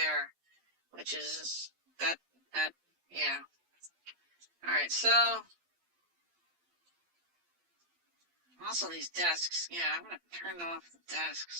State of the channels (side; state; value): left; late; 12 ms